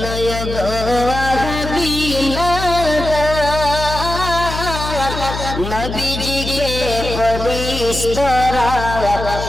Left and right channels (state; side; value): noise; left; hum, 6 dB below the sound